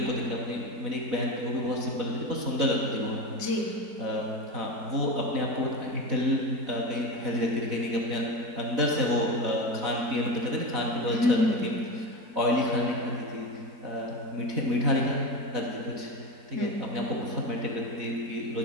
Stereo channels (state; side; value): late; left; 4.0 ms